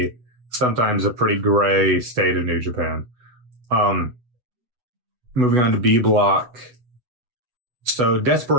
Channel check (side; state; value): left; late; 8.2 ms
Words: sometimes a pretty gray state of New Japan. Moving on to B block. So